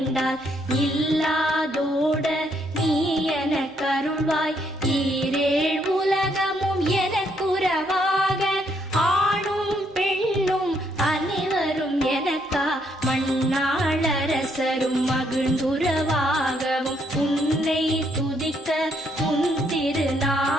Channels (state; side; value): normal; both; correlation 0.72